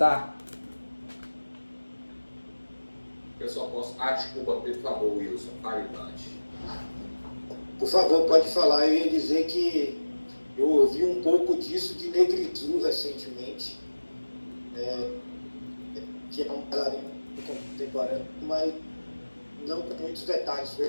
Eu só posso... desculpa, por favor, Wilson, fale antes. Por favor, pode falar. Eu ia dizer que eu ouvi um pouco disso de Negritude recentemente, que é um bailarino contemporâneo, mas não com muitos detalhes,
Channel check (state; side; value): inverted; both; correlation -1.00